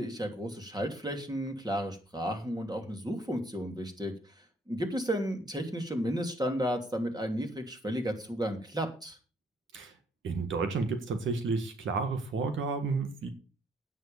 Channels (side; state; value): both; normal; correlation 0.67